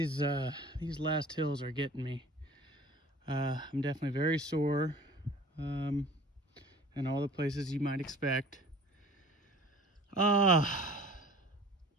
last hills are getting me. I'm definitely very sore, in all the places you might expect.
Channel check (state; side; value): normal; both; correlation 0.46